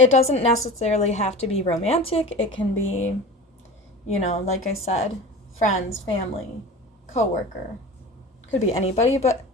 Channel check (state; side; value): normal; both; correlation 0.34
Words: doesn't necessarily have to be romantic. It can be, like I said, friends, family, coworker. Could be anybody, but